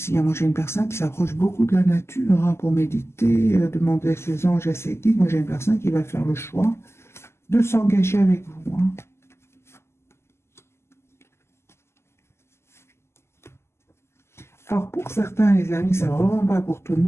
Moi, j'ai une personne qui s'approche beaucoup de la nature hein, pour méditer, demander à ses anges, à ses guides. Moi, j'ai une personne qui va faire le choix de s'engager avec vous. Hein. Alors, pour certains, les amis, c'est vraiment pas pour tout le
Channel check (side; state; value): right; late; 0.13 ms